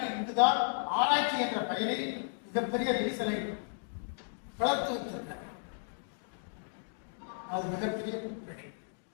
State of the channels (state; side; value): silent; right; digital silence